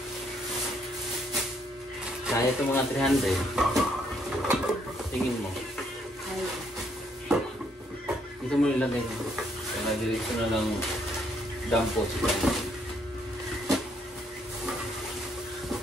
Kaya ito mga 300. Tingin mo. Dito mo nilagay mo. Kaya diretso na lang dampo siya.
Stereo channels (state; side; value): normal; both; correlation 0.70